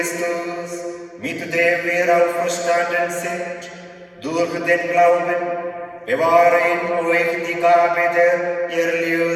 mit dem wir auferstanden sind, durch den Glauben, bewahre in euch die Gabe der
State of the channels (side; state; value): both; identical; correlation 1.00